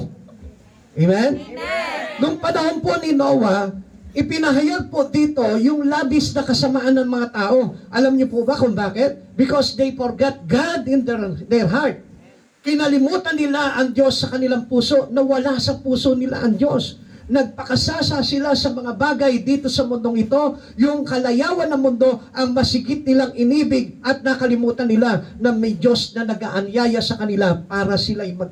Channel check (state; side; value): identical; both; correlation 1.00